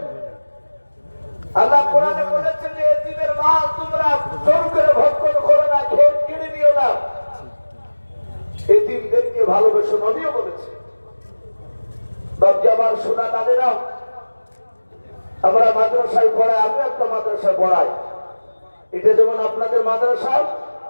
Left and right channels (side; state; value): both; inverted; correlation -1.00